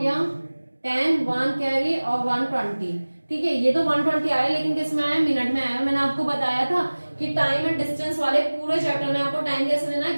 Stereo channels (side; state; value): both; inverted; correlation -1.00